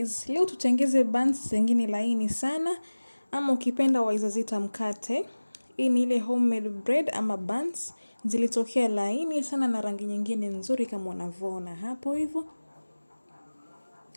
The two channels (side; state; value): both; inverted; correlation -1.00